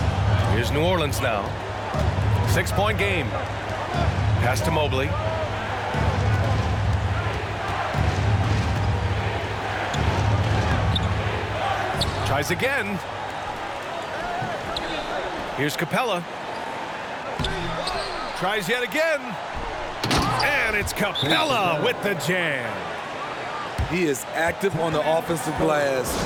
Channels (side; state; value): both; identical; correlation 1.00